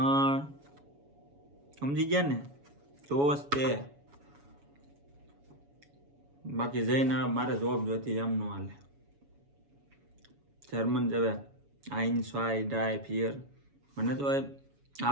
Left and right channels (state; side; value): late; left; 7.1 ms